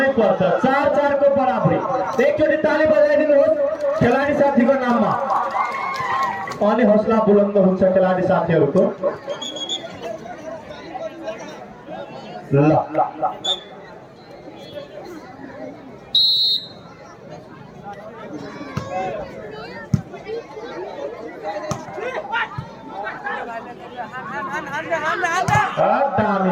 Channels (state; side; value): identical; both; correlation 1.00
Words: पर्छ। 4-4 को बराबरी। एकचोटि ताली बजाइदिनुहोस् खेलाडी साथीको नाममा। अनि हौसला बुलन्द हुन्छ खेलाडी साथीहरूको। ल